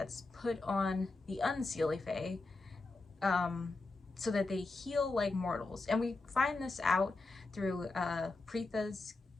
put on the unseelie Fae, so that they heal like mortals. And we find this out through Preetha's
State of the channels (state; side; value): quieter; right; 3.4 dB